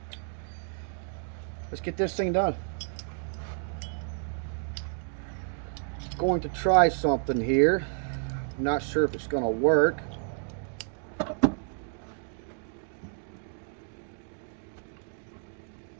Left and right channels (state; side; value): silent; left; 57 dB below the other